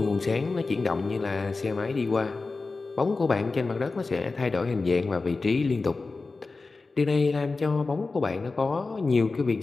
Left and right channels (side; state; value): right; quieter; 3.8 dB